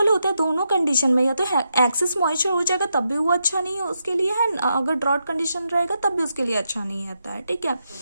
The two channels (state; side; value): inverted; both; correlation -0.84